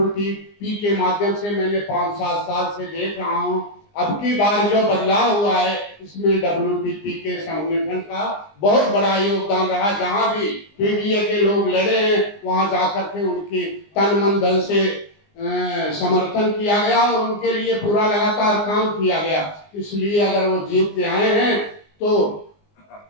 के माध्यम से मैंने 5-7 साल से देख रहा हूँ। अब की बार जो बदलाव हुआ है इसमें WTP के संगठन का बहुत बड़ा योगदान रहा। जहाँ भी पीडीए के लोग लड़े हैं वहाँ जाकर के उनकी तन मन धन से समर्थन किया गया और उनके लिए पूरा लगातार काम किया गया। इसलिए अगर वो जीत के आए हैं तो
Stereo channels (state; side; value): late; right; 20 ms